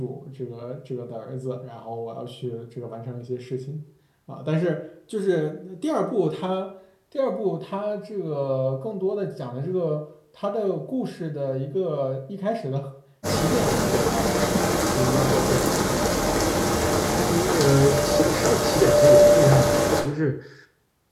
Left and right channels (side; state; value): both; identical; correlation 1.00